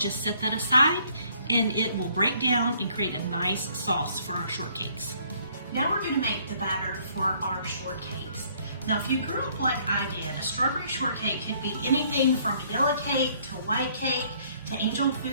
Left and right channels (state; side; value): inverted; both; correlation -0.63